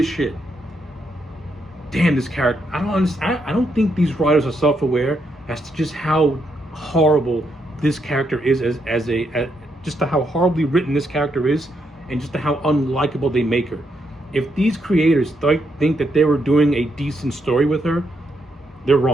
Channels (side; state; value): both; normal; correlation 0.79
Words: shit. Damn, this character. I don't think these writers are self-aware as to just how horrible this character is just to how horribly written this character is, and just to how unlikable they make her. If these creators think that they were doing a decent story with her, they're